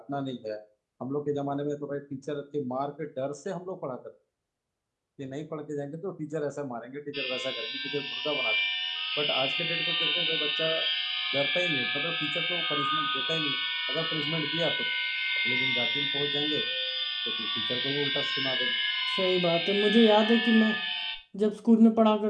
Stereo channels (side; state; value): both; identical; correlation 1.00